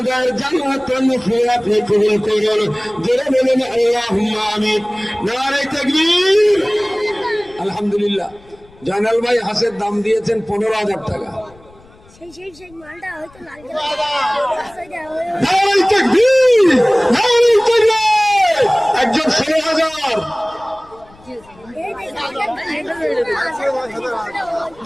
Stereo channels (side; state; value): left; noise; rumble, 26 dB below the sound